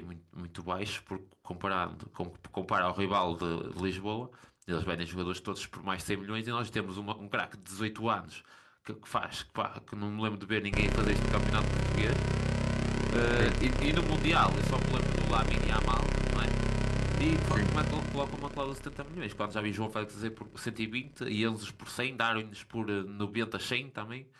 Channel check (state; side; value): identical; both; correlation 1.00